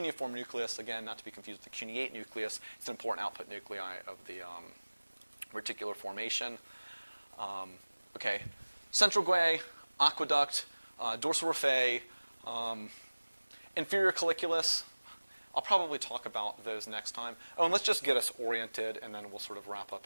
nucleus, again, not to be confused with the cuneate nucleus, it's an important output nuclei of the reticular formation. Okay, central guae, aqueduct, dorsal raphe, inferior colliculus. I'll probably talk about those next time. Oh, and let's just get us oriented, and then we'll sort of wrap up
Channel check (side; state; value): both; inverted; correlation -1.00